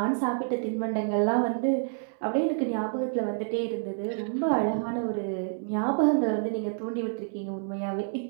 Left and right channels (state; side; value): silent; left; 59 dB below the other